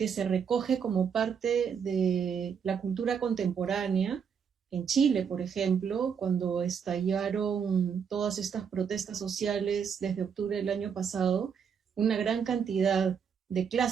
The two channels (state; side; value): quieter; left; 7.0 dB